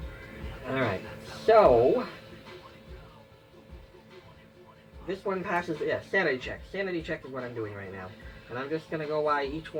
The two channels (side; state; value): both; identical; correlation 1.00